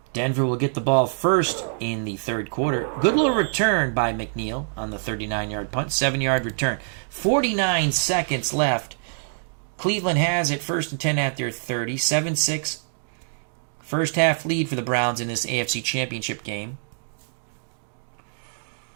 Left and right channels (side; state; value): left; silent; digital silence